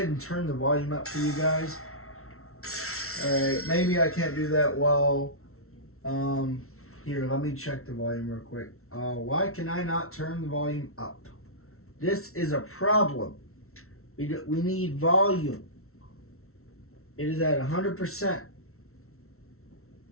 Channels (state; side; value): late; right; 0.63 ms